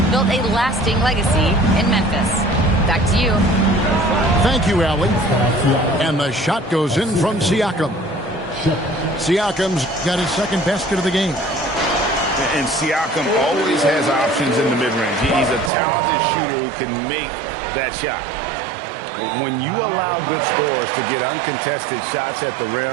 built a lasting legacy in Memphis. Back to you. Thank you, Allie. And the shot goes in from Siakam. Siakam's got his second basket of the game. And Siakam always has options in the mid-range. He's a talented shooter who can make that shot. When you allow good scorers to get uncontested shots at the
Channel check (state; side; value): drops out; left; at 15.7 s